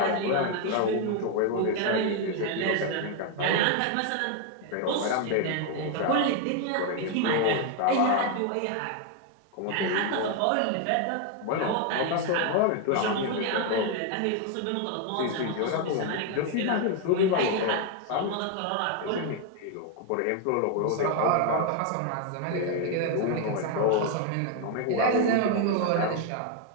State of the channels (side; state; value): both; different; correlation 0.01